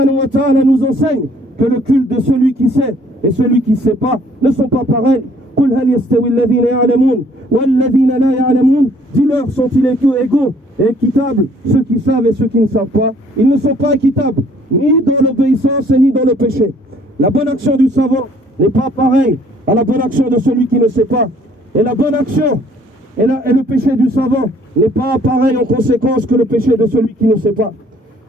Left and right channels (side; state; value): both; normal; correlation 0.60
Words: wa ta'ala nous enseigne que le culte de celui qui sait et celui qui ne sait pas ne sont pas pareils. قل هل يستوي الذين يعلمون والذين لا يعلمون. Dis-leur, sont-ils égaux et équitables, ceux qui savent et ceux qui ne savent pas? Ils ne sont pas équitables, ni dans l'obéissance et ni dans le péché. La bonne action du savant n'est pas pareille à la bonne action de celui qui ne sait pas. Et la bonne action et le péché du savant n'est pas pareil en conséquence que le péché de celui qui ne sait pas.